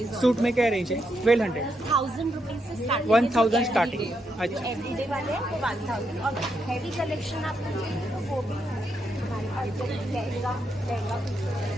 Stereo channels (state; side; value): normal; both; correlation 0.81